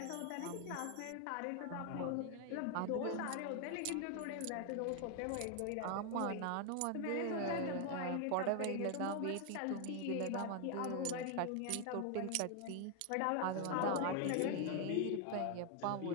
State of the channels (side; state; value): both; different; correlation 0.00